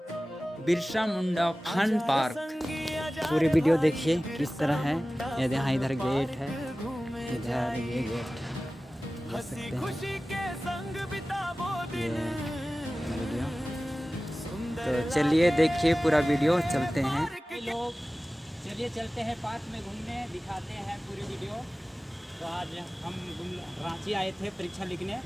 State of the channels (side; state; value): both; normal; correlation 0.97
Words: बिरसा मुंडा फन पार्क। पूरी वीडियो देखिए किस तरह है। ये यहाँ इधर गेट है, इधर ये गेट देख सकते हैं ये वीडियो। तो चलिए देखिए पूरा वीडियो, चलते हैं लोग। चलिए चलते हैं पार्क में घूमने, दिखाते हैं पूरी वीडियो। तो आज हम रांची आए थे परीक्षा लिखने,